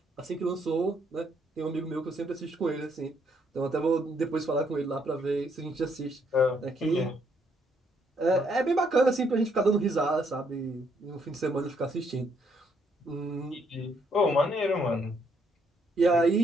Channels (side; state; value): both; normal; correlation 0.71